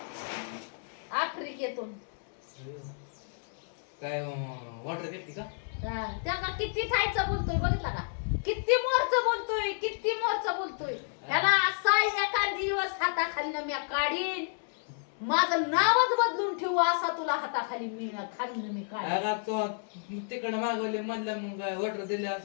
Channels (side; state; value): right; silent; digital silence